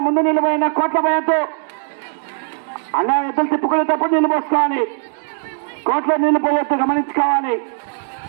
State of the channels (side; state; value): left; silent; 61 dB below the other